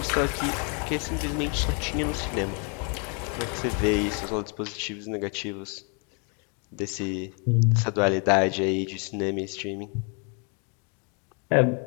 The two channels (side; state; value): right; quieter; 37.0 dB